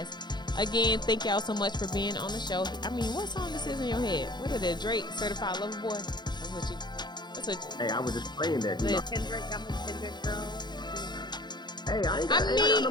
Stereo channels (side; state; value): right; late; 0.21 ms